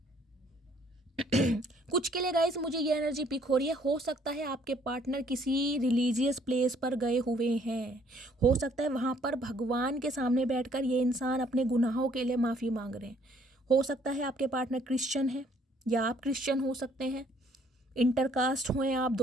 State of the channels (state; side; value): normal; both; correlation 0.63